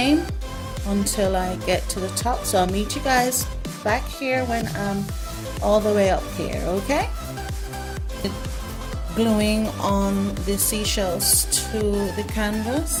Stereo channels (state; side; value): identical; both; correlation 1.00